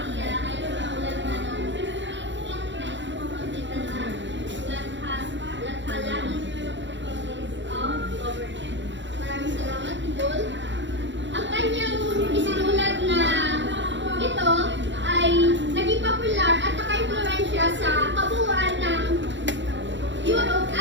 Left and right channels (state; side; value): late; left; 0.53 ms